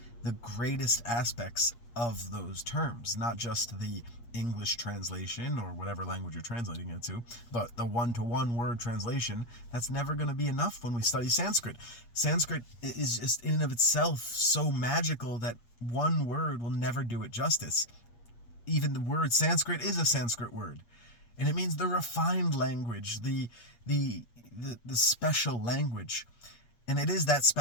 the greatest aspects of those terms, not just the English translation or whatever language you're translating it to, but the one-to-one word translation. That's never going to be enough when we study Sanskrit. Sanskrit is just in and of itself so magical that one word will never do it justice. Even the word Sanskrit is a Sanskrit word, and it means the refined language, the special language, and it is that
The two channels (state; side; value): late; right; 8.5 ms